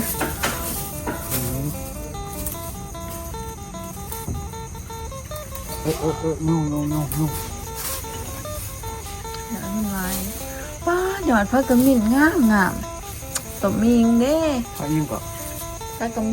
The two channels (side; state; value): both; identical; correlation 1.00